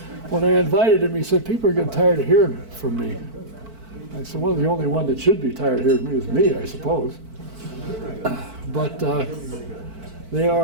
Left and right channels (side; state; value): left; late; 4.5 ms